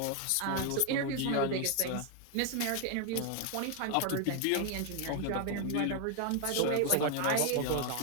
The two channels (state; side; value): different; both; correlation 0.00